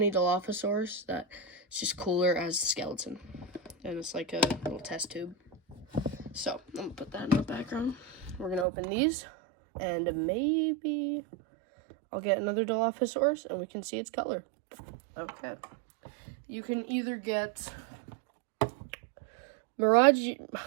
Dilophosaurus that it's just cooler as the skeleton. And it's like a little test tube. So, I'm going to put that in the background. We're going to open these. And maybe I'll get another Dilophosaurus and we can see its color. Okay. You can either get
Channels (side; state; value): left; drops out; at 8.7 s